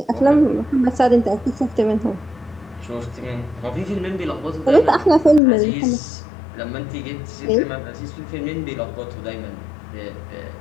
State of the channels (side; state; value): right; drops out; at 5.4 s